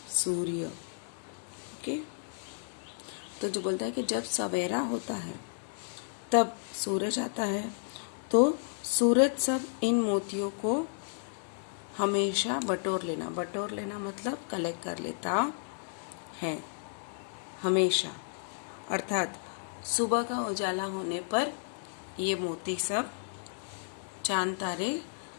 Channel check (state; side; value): silent; right; digital silence